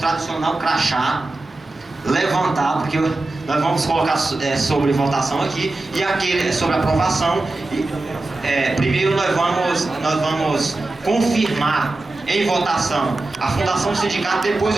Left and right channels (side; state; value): left; quieter; 3.0 dB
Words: crachá, levantar, porque nós vamos colocar sobre votação aqui, e aquele sobre aprovação. Primeiro nós vamos confirmar em votação a fundação do sindicato, depois